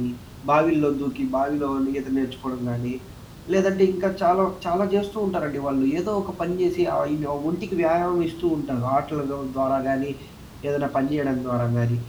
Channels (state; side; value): identical; both; correlation 1.00